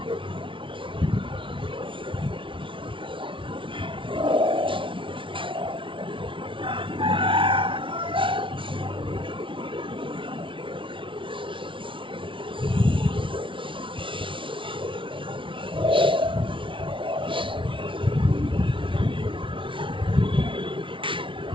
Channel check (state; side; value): late; left; 0.25 ms